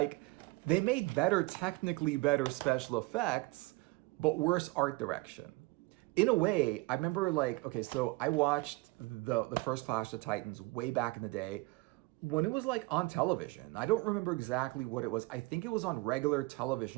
they made technically better special effects, but worse art direction. In a way, I remember like, okay, so I watched the first Clash of Titans way back in the day when it was like on television. I don't remember exactly what it was. I think it was on regular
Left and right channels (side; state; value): left; quieter; 23.8 dB